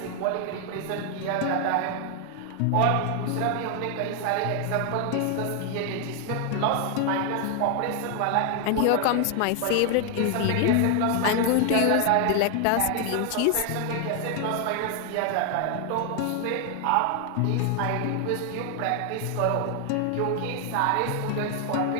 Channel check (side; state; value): both; different; correlation 0.00